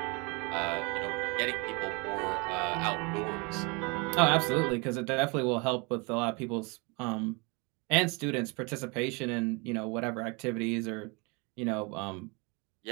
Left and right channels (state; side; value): quieter; left; 29.8 dB